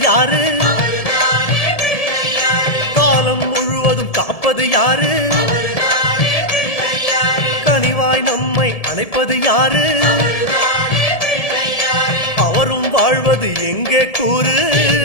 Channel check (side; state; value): right; late; 1.7 ms